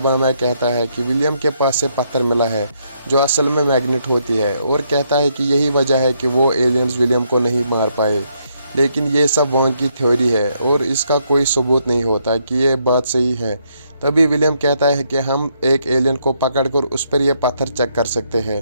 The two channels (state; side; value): inverted; both; correlation -0.74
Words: में कहता है कि विलियम के पास से पत्थर मिला है जो असल में मैग्नेट होती है, और कहता है कि यही वजह है कि वो एलियंस विलियम को नहीं मार पाए। लेकिन ये सब वांग की थ्योरी है और इसका कोई सबूत नहीं होता कि ये बात सही है। तभी विलियम कहता है कि हम एक एलियन को पकड़कर उस पर यह पत्थर चेक कर सकते हैं।